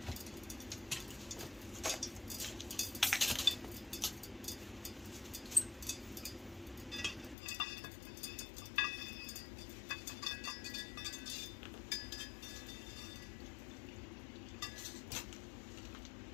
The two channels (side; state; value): right; drops out; at 7.4 s